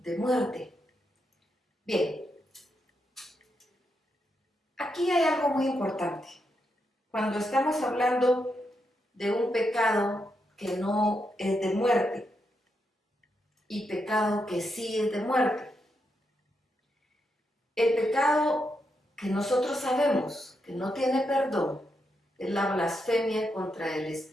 muerte. Bien, aquí hay algo muy importante. Cuando estamos hablando de un pecado que no es de muerte y pecado que sí es de muerte, el pecado que nosotros sabemos que no tiene perdón es la blasfemia contra el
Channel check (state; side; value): normal; both; correlation 0.83